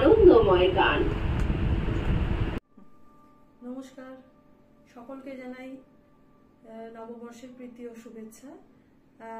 গান। নমস্কার, সকলকে জানাই নববর্ষের প্রীতি ও শুভেচ্ছা।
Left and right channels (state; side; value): identical; both; correlation 1.00